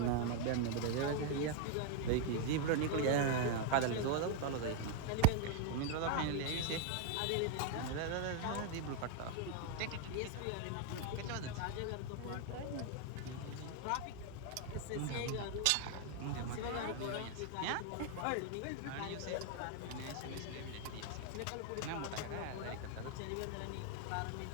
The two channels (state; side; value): different; both; correlation 0.00